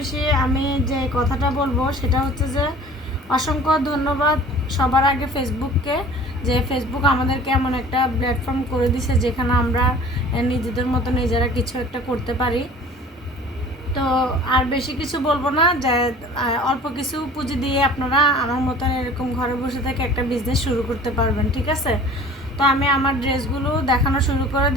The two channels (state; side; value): normal; both; correlation 0.46